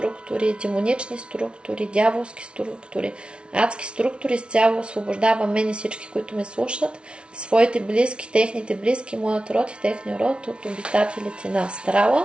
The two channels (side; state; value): left; late; 0.058 ms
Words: демонични структури, дяволски структури, адски структури. Изцяло освобождавам мен и всички, които ме слушат, своите близки, техните близки, моят род и техния род от обитателите на